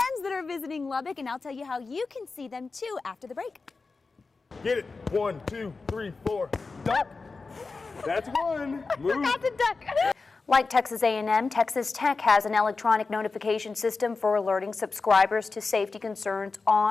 that are visiting Lubbock, and I'll tell you how you can see them too after the break. Get it. 1, 2, 3, 4. Duck. That's one. Move. Forgot to duck. Like Texas A&M, Texas Tech has an electronic notification system for alerting subscribers to safety concerns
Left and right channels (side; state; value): right; quieter; 4.1 dB